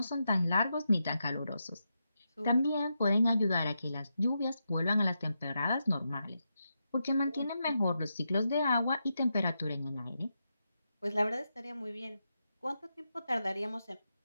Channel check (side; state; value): both; inverted; correlation -0.86